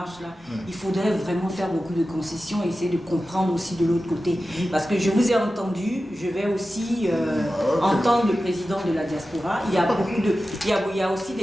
il faudrait vraiment faire beaucoup de concessions et essayer de comprendre aussi de l'autre côté. Parce que je vous ai entendu, je vais aussi entendre le président de la diaspora. Il y a beaucoup de, il y a aussi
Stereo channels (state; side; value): normal; both; correlation 0.94